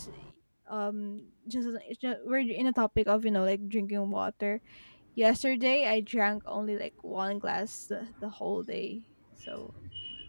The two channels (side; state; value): both; inverted; correlation -1.00